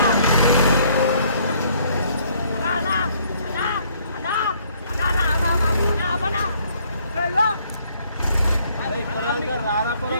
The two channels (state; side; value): inverted; both; correlation -0.64